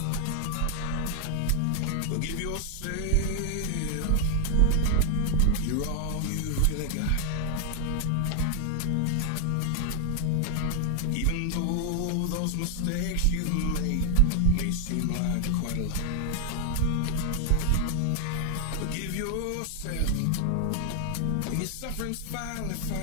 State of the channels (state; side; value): different; both; correlation 0.00